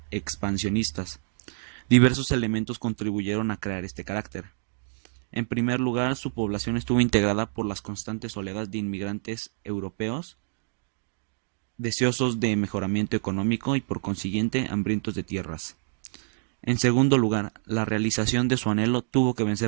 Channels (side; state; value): left; silent; digital silence